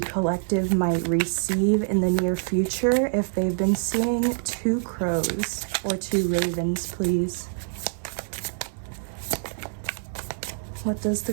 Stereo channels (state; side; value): silent; left; 60 dB below the other